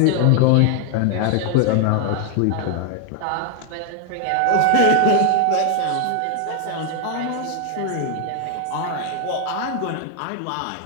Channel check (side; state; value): both; different; correlation 0.00